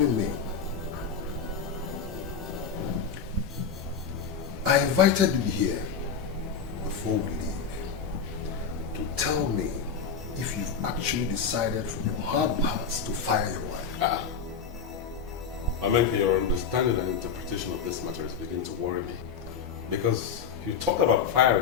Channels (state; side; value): quieter; right; 6.4 dB